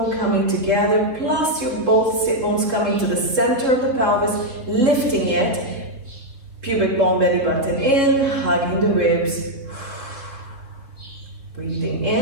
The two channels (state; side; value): late; left; 3.8 ms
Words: coming together, plus your both sit bones coming to the center of the pelvis, lifting it. Pubic bone, belly button in, hugging the ribs. Breathing